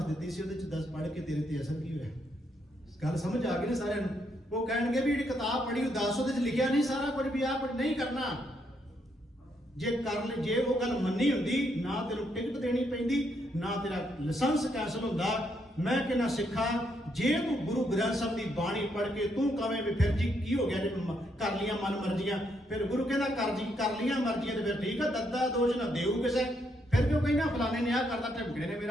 ਦਿੱਤੀ ਸੀ ਉਹਦੇ 'ਚ 10 ਪੜ੍ਹ ਕੇ ਤੇਰੇ ਤੇ ਅਸਰ ਕੀ ਹੋਇਆ? ਗੱਲ ਸਮਝ ਆ ਗਈ ਨਾ ਸਾਰਿਆਂ ਨੂੰ? ਉਹ ਕਹਿਣਗੇ ਵੀ ਜਿਹੜੀ ਕਿਤਾਬ ਪੜ੍ਹੀ ਉਹ 10 ਉਹਦੇ 'ਚ ਲਿਖਿਆ ਨਹੀਂ ਸਾਰਾ ਕੁਝ ਵੀ ਆਹ ਕੁਝ ਨਹੀਂ ਕਰਨਾ। ਜੇ ਕਰ ਲੈ, ਜੇ ਉਹ ਗੱਲ ਮੰਨੀ ਹੁੰਦੀ, ਨਾ ਤੈਨੂੰ ਟਿਕਟ ਦੇਣੀ ਪੈਂਦੀ, ਨਾ ਤੇਰਾ ਲਾਇਸੈਂਸ ਕੈਂਸਲ ਹੁੰਦਾ। ਮੈਂ ਕਹਿੰਦਾ ਸਿੱਖਾ, ਜੇ ਤੂੰ ਗੁਰੂ ਗ੍ਰੰਥ ਸਾਹਿਬ ਦੀ ਬਾਣੀ ਪੜ੍ਹ ਕੇ ਤੂੰ ਕਵੇਂ ਵੀ ਫਿਰ ਜੀ ਕੀ ਹੋ ਗਿਆ ਜੇ ਕਰ ਲੀਆਂ ਮਨ ਮਰਜ਼ੀਆਂ, ਫਿਰ ਗੁਰੂ ਕਹਿੰਦਾ ਕਰ ਲੀਆਂ ਮਰਜ਼ੀਆਂ ਤੇ ਫਿਰ ਠੀਕ ਆ, ਦੱਦਾ ਦੋਸ਼ ਨਾ ਦੇਊ ਕਿਸੇ। ਫਿਰ ਕਿਉਂ ਕਹਿੰਦਾ ਫਲਾਣੇ ਨੇ ਆਹ ਕਰਤਾ, ਢਿਮਕੜੇ ਨੇ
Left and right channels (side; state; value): both; normal; correlation 0.76